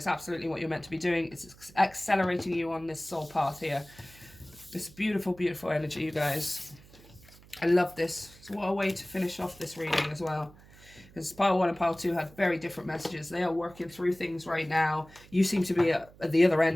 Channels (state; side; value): noise; right; hum, 23 dB below the sound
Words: absolutely what you're meant to be doing. It's accelerating you on this soul path here. This beautiful, beautiful energy, you guys. I love this. So what a way to finish off this reading as well. Because pile 1 and pile 2 had very different messages. They are working through things right now. You seem to be at the other